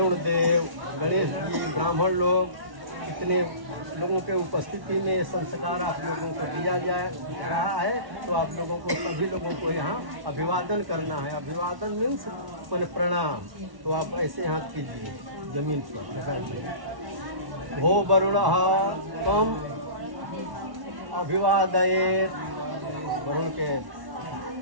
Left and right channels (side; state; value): left; late; 1.1 ms